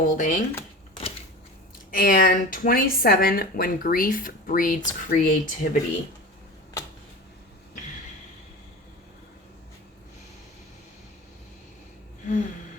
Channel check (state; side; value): normal; both; correlation 0.33